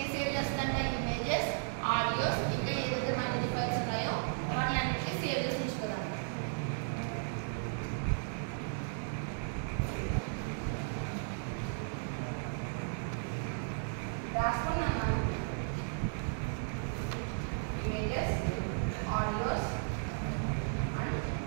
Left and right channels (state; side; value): silent; left; digital silence